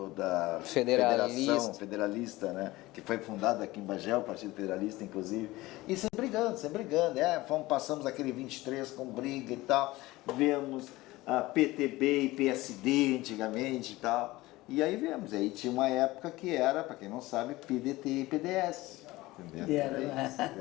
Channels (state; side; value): quieter; right; 19.2 dB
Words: da Federalista. Federalista, né, que foi fundada aqui em Bagé, o Partido Federalista, inclusive, e sempre brigando. Passamos aquele 23 com briga e tal, vemos a PTB e PSD antigamente e tal, e aí vemos, aí tinha uma época que era, para quem não sabe, PDT e PDS, entendeu?